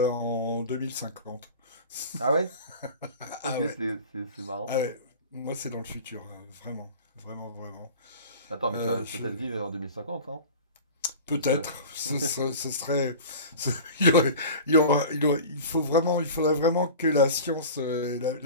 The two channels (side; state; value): both; inverted; correlation -0.37